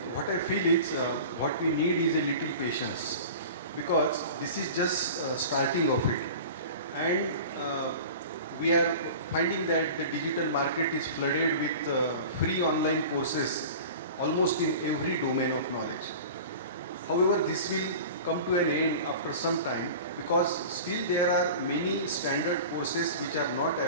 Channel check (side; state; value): both; inverted; correlation -0.37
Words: what I feel is what we need is a little patience, because this is just starting of it, and we are finding that the digital market is flooded with free online courses almost in every domain of knowledge. However, this will come to an end after some time, because still there are many standard courses which are not